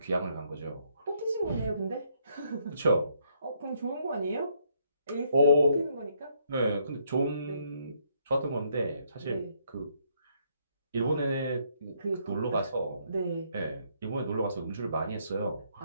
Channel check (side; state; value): both; inverted; correlation -0.72